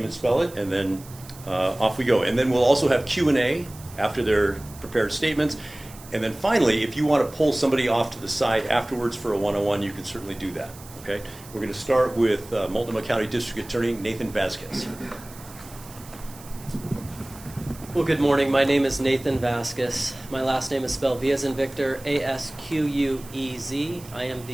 and spell it, and then off we go. And then we'll also have Q&A after their prepared statements. And then finally, if you want to pull somebody off to the side afterwards for a one-on-one, you can certainly do that. Okay? We're going to start with Multnomah County District Attorney Nathan Vasquez. Well, good morning. My name is Nathan Vasquez. My last name is spelled V as in Victor, A-S-Q-U-E-Z. I am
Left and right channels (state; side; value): noise; right; hiss, 19 dB below the sound